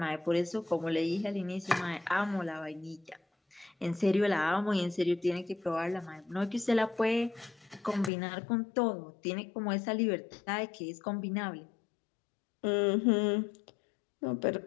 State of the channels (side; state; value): right; drops out; at 8.1 s